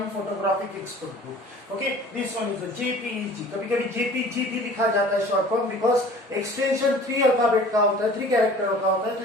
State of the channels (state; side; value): normal; both; correlation 0.46